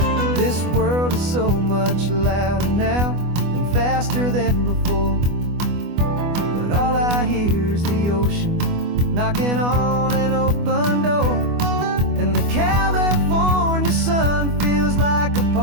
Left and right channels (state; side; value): late; left; 24 ms